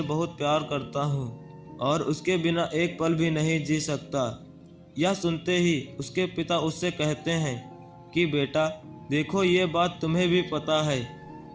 बहुत प्यार करता हूँ और उसके बिना एक पल भी नहीं जी सकता। यह सुनते ही उसके पिता उससे कहते हैं कि बेटा देखो, ये बात तुम्हें भी पता है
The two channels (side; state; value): both; identical; correlation 1.00